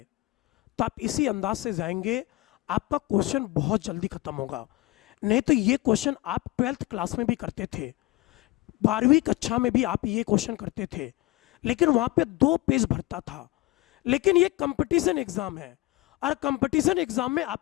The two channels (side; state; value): right; quieter; 18.8 dB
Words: तो आप इसी अंदाज से जाएंगे, आपका क्वेश्चन बहुत जल्दी खत्म होगा। नहीं तो ये क्वेश्चन आप 12th क्लास में भी करते थे, 12वीं कक्षा में भी आप ये क्वेश्चन करते थे, लेकिन वहां पे 2 पेज भरता था। लेकिन ये कंपटीशन एग्जाम है और कंपटीशन एग्जाम में